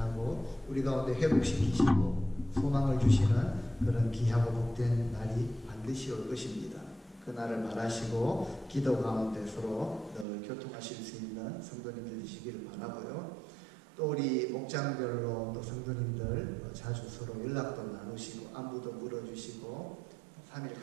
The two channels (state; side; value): drops out; left; at 10.2 s